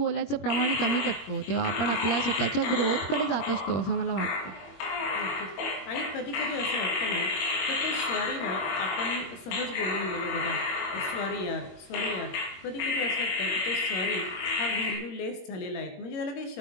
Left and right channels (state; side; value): late; right; 21 ms